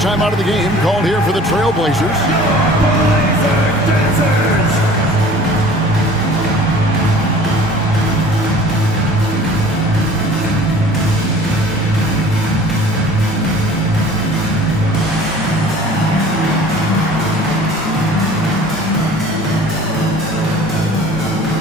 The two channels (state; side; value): normal; both; correlation 0.47